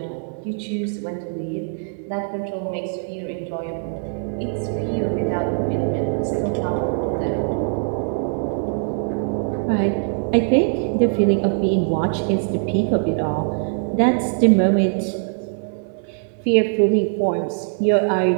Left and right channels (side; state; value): left; silent; digital silence